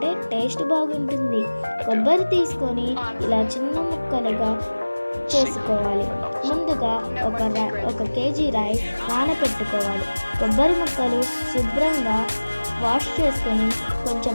టేస్ట్ బాగుంటుంది. కొబ్బరి తీసుకొని ఇలా చిన్న ముక్కలుగా చేసుకోవాలి. ముందుగా 1 కేజీ రైస్ నానబెట్టుకోవాలి. కొబ్బరి ముక్కలు శుభ్రంగా వాష్ చేసుకొని కొంచెం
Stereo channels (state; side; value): inverted; both; correlation -1.00